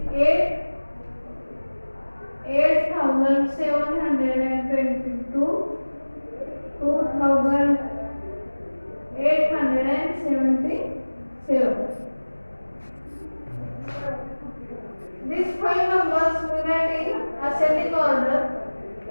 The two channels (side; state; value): both; inverted; correlation -1.00